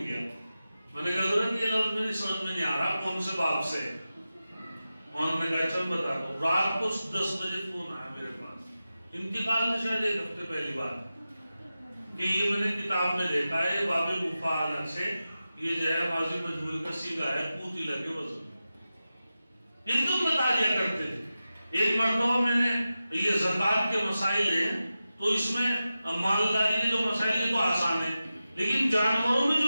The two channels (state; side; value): inverted; both; correlation -0.93